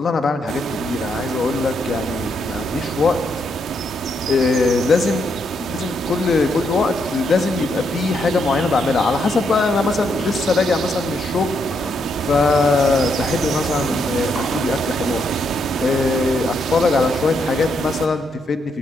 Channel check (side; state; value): both; normal; correlation 0.77